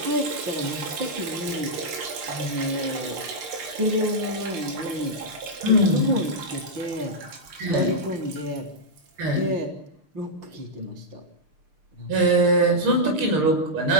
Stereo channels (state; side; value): late; left; 6.6 ms